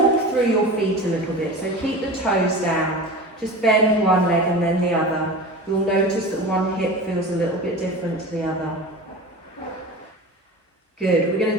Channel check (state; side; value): normal; both; correlation 0.32